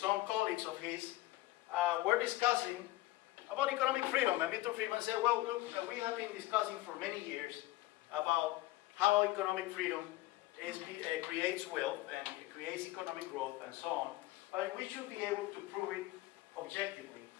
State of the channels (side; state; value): right; quieter; 17.6 dB